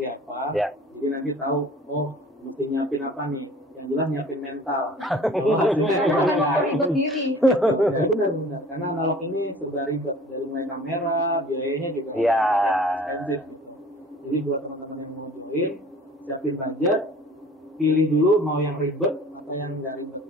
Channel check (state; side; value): normal; both; correlation 0.47